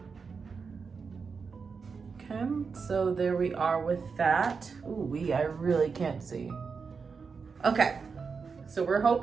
Okay, so there we are with that. Ooh, I really can't see. Okay, so we're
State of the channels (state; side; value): quieter; left; 5.3 dB